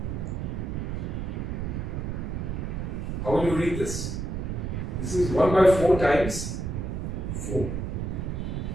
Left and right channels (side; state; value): right; noise; rumble, 3 dB below the sound